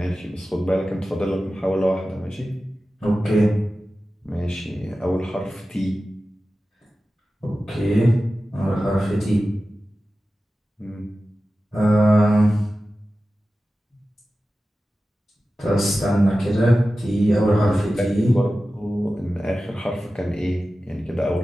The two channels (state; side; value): normal; both; correlation 0.94